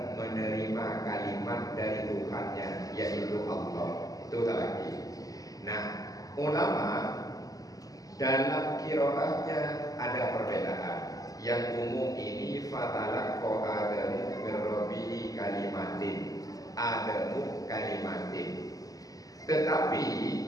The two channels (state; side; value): late; right; 0.17 ms